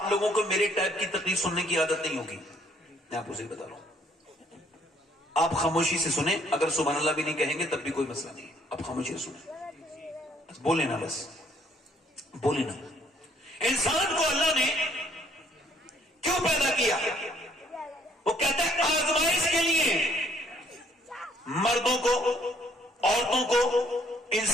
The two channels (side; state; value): both; normal; correlation 0.65